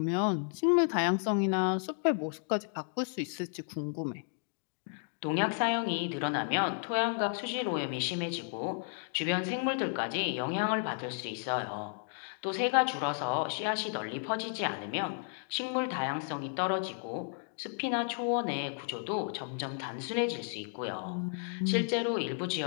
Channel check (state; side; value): silent; right; 56 dB below the other